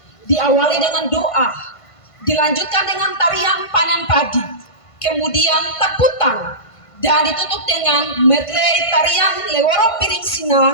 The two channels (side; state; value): right; late; 1.5 ms